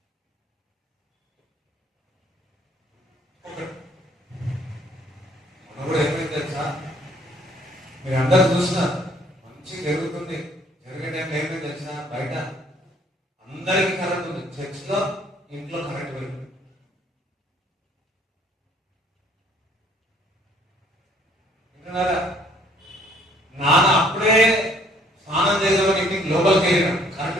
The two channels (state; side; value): normal; both; correlation 0.61